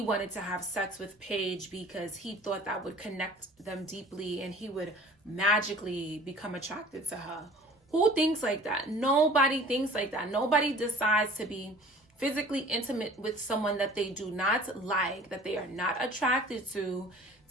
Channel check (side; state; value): both; normal; correlation 0.47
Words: wanted to have sex with Paige because he thought that would connect them deeply and he would magically become attracted to her. Who thinks like that? Nobody thinks like that. Nobody decides to be physically intimate with someone that they do not like, that they are not attracted to